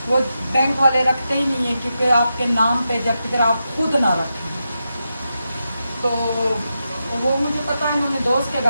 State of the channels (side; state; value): both; inverted; correlation -0.88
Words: वो बैंक वाले रखते ही नहीं है, क्योंकि आपके नाम पे जब तक आप खुद ना रखें। तो वो मुझे पता है, इन्होंने दोस्त के